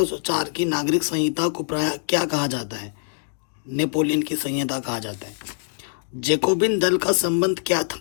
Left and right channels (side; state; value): right; silent; digital silence